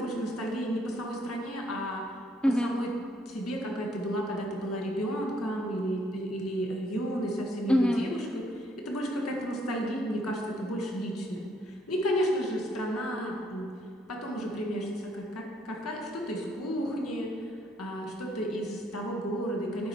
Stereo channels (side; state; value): both; normal; correlation 0.69